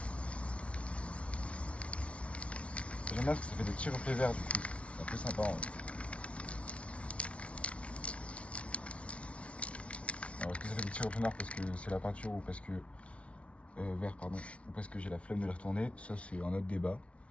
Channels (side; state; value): right; late; 0.062 ms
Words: J'aime bien parce que ça fait des petits reflets verts du coup. C'est un peu sympa. Hein. Alors est-ce que ça fait des petits reflets noirs parce que c'est la peinture ou parce que... vert pardon. Ou parce que j'ai la flemme de les retourner. Ça c'est un autre débat.